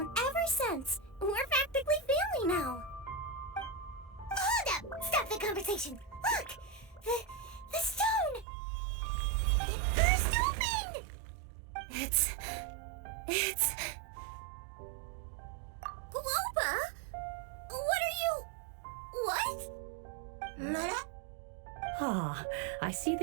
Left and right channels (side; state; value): left; drops out; at 8.5 s